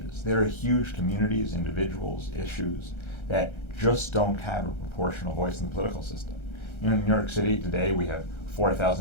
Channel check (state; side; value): late; right; 1.3 ms